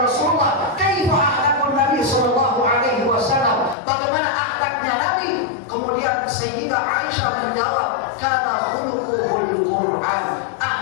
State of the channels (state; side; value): drops out; right; at 3.8 s